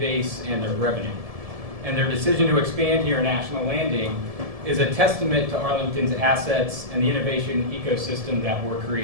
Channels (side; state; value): left; late; 1.7 ms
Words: and their revenue. And their decision to expand here in National Landing is a testament to Arlington's assets and the innovation ecosystem that we're